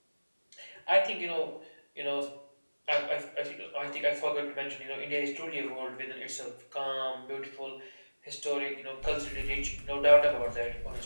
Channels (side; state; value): both; inverted; correlation -1.00